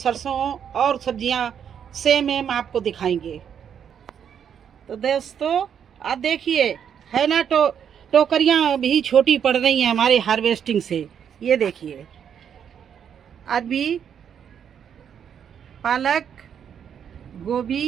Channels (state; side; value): quieter; left; 8.2 dB